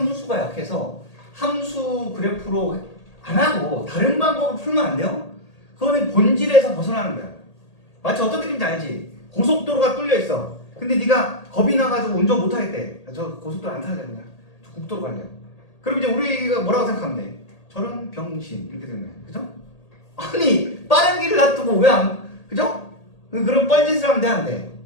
약해서 함수 그래프로 안 하고 다른 방법으로 풀면 안 돼요? 그거는 본질에서 벗어나는 거야. 마치 어떤 느낌인지 알지? 고속도로가 뚫려 있어. 근데 네가 겁이 나가지고 운전 못 하겠대. 저 고속도로 안 타야 되냐? 저 국도로 갈래요. 그럼 이제 우리가 뭐라고 생각하면 돼? 저런 병신 이렇게 되는 거야. 그죠? 아니 빠른 길을 놔두고 왜 안? 그죠? 그런 뻘짓을 하면 돼 안 돼?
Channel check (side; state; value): right; late; 1.8 ms